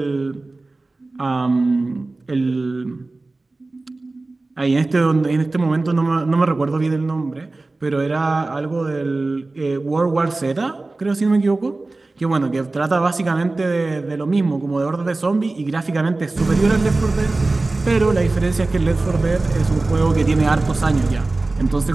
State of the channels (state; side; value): quieter; left; 3.2 dB